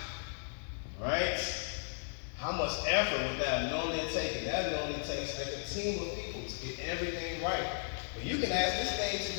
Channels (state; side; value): silent; right; digital silence